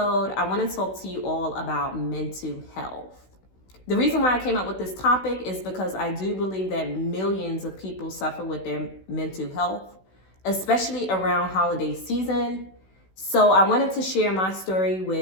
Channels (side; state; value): right; late; 16 ms